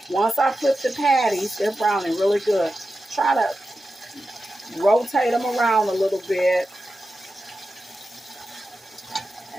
once I flip the patties, they're browning really good. Try to rotate them around a little bit.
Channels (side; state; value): both; normal; correlation 0.92